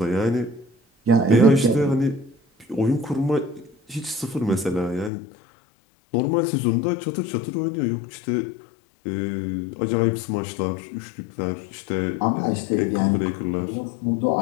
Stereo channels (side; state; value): right; drops out; at 5.1 s